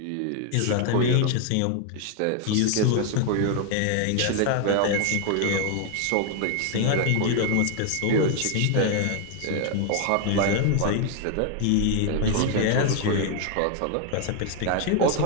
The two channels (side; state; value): both; different; correlation 0.00